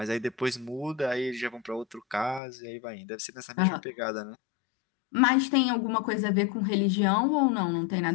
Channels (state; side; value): drops out; right; at 2.4 s